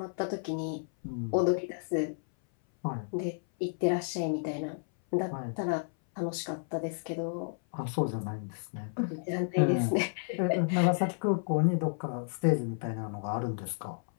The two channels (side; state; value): right; silent; 57 dB below the other